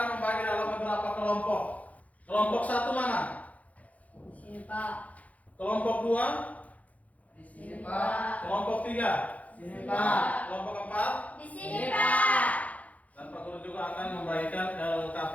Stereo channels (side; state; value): right; late; 0.070 ms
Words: membagi dalam beberapa kelompok. Kelompok satu mana? Di sini Pak. Kelompok dua? Di sini Pak. Kelompok tiga? Di sini Pak. Kelompok empat? Di sini Pak. Dan Pak Guru juga akan membagikan